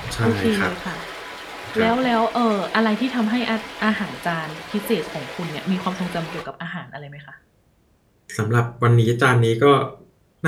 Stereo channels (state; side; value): identical; both; correlation 1.00